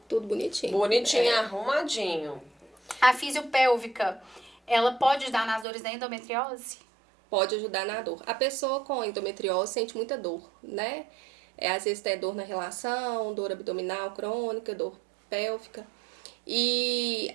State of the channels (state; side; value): drops out; left; at 5.7 s